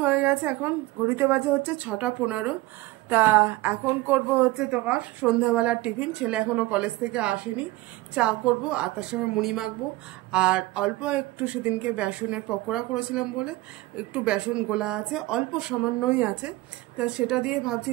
হয়ে গেছে, এখন ঘড়িতে বাজে হচ্ছে 6:15। তা এখন করব হচ্ছে তোমার সন্ধ্যাবেলার টিফিন। ছেলে এখনও কলেজ থেকে আসেনি। চা করব আর তার সঙ্গে মুড়ি মাখবো। আর অল্প একটু সেদিনকে বেসনের পকোড়া করেছিলাম বলে একটু বেসন গোলা আছে, অল্প সামান্যই আছে। তা সেটা দিয়ে ভাবছি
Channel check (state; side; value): quieter; left; 19.1 dB